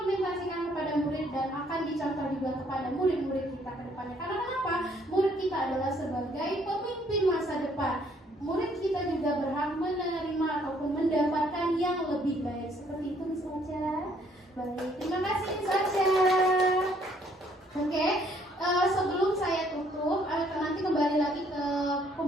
kepada murid dan akan dicontoh juga kepada murid-murid kita ke depannya. Karena kenapa? Murid kita adalah sebagai pemimpin masa depan. Murid kita juga berhak menerima ataupun mendapatkan yang lebih baik. Seperti itu, Miss Ocha. Baik, terima kasih Miss Aca. Oke, sebelum saya tutup, nanti kembali lagi ke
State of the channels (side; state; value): both; normal; correlation 0.65